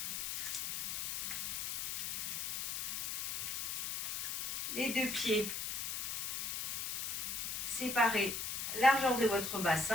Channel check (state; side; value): noise; left; hiss, 1 dB below the sound